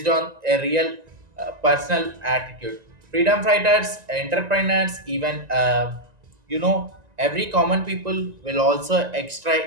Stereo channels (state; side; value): late; left; 1.9 ms